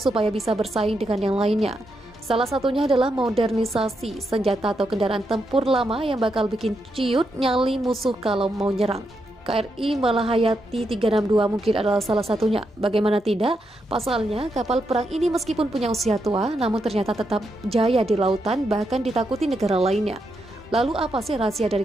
bisa bersaing dengan yang lainnya. Salah satunya adalah modernisasi senjata atau kendaraan tempur lama yang bakal bikin ciut nyali musuh kalau mau nyerang. KRI Malahayati 362 mungkin adalah salah satunya. Bagaimana tidak, pasalnya kapal perang ini meskipun punya usia tua, namun ternyata tetap jaya di lautan, bahkan ditakuti negara lainnya. Lalu apa sih rahasia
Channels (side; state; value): both; normal; correlation 0.82